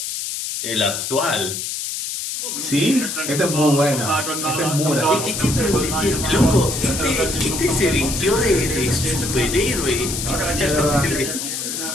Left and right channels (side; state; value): left; noise; hiss, 4 dB below the sound